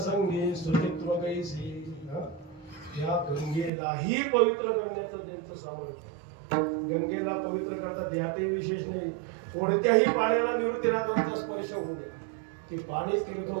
संगे सुचित्व कैसी. या गंगेलाही पवित्र करण्याचं त्यांचं सामर्थ्य. गंगेला पवित्र करतात यातही विशेष नाही. कोणत्याही पाण्याला निवृत्तीनाथांचा स्पर्श होऊ द्या, ती पाणी तीर्थ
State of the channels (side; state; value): left; drops out; at 3.7 s